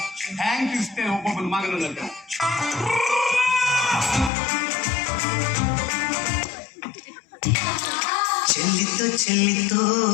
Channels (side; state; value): right; drops out; at 4.3 s